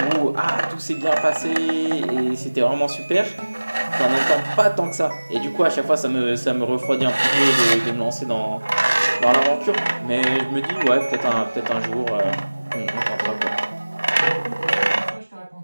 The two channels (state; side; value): inverted; both; correlation -1.00